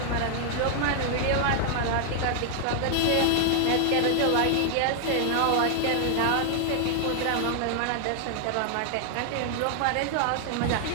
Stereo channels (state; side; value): different; both; correlation 0.00